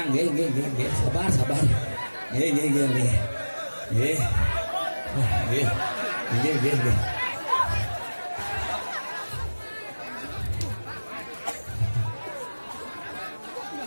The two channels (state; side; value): inverted; both; correlation -1.00